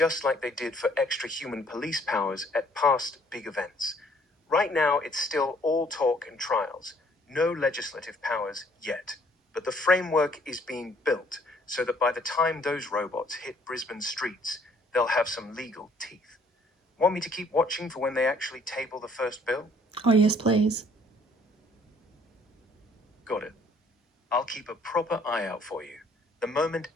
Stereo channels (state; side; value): normal; both; correlation 0.61